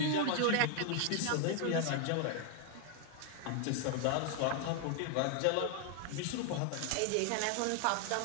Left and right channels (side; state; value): both; different; correlation 0.00